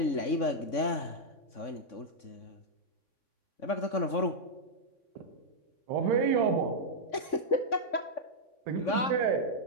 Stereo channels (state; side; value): late; right; 3.6 ms